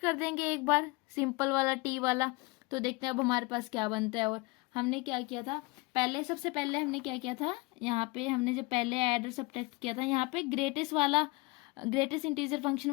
देंगे एक बार सिंपल वाला t वाला, तो देखते हैं अब हमारे पास क्या बनता है। और हमने क्या किया था, सबसे पहले हमने क्या किया था, यहाँ पे हमने जब पहले ऐड और सब्ट्रैक्ट किया था, यहाँ पे ग्रेटेस्ट इंटीजर फंक्शन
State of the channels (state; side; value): quieter; right; 24.7 dB